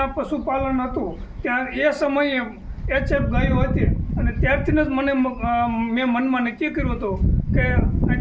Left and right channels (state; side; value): identical; both; correlation 1.00